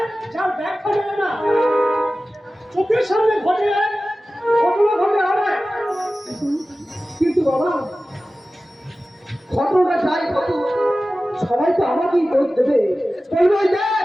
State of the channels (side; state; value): both; normal; correlation 0.96